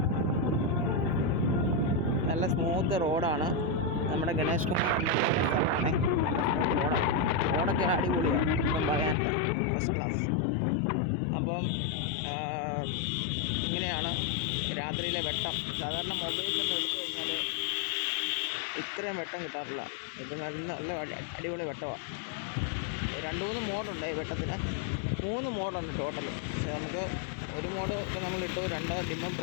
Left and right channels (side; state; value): right; drops out; at 9.2 s